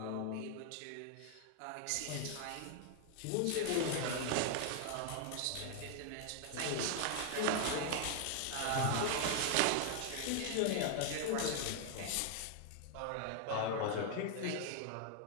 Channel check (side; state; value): both; different; correlation 0.00